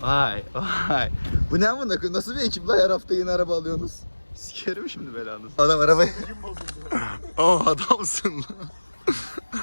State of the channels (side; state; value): both; inverted; correlation -1.00